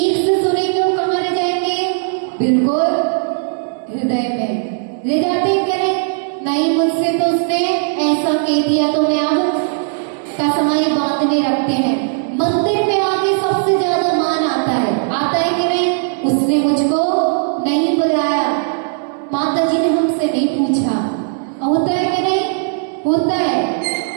से सुनेंगे वो कहाँ ले जाएंगे? बिल्कुल हृदय में ले जाते करें। नहीं, मुझसे तो उसने ऐसा कह दिया तो मैं अब कसमाई बांधने रखते हैं। मंदिर में आके सबसे ज्यादा मान आता है कि नहीं? उसने मुझको नहीं बुलाया, माता जी ने हमसे नहीं पूछा। होता है कि नहीं? होता है।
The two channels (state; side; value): silent; left; digital silence